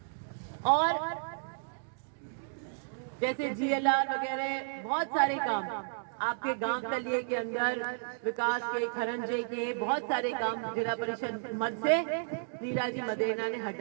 और जैसे जीएलआर वगैरह बहुत सारे काम आपके गांव तलिए के अंदर विकास के, खरंजे के बहुत सारे काम जिला परिषद मद से लीला जी मदेना ने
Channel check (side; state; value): left; silent; digital silence